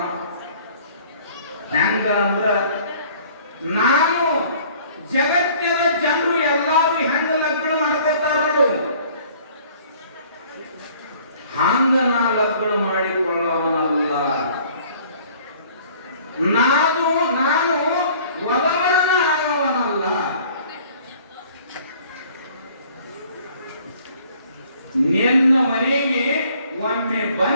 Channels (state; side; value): inverted; both; correlation -0.54